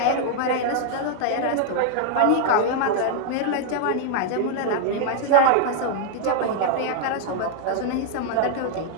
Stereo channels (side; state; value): both; different; correlation 0.00